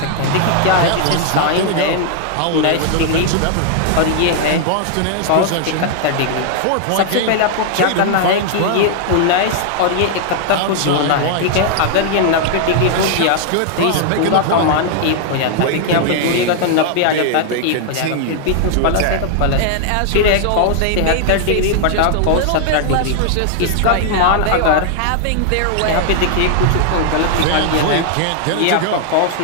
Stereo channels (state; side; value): different; both; correlation 0.00